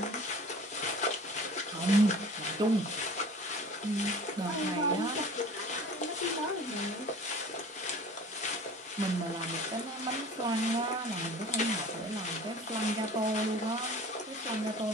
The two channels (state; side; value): normal; both; correlation 0.43